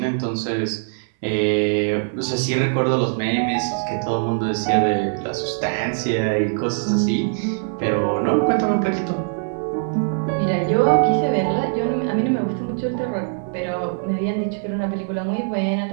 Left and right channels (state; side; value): silent; left; digital silence